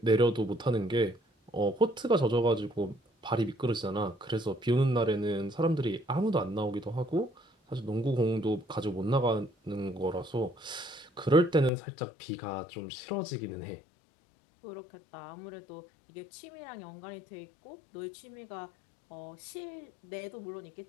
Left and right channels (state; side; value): drops out; right; at 11.7 s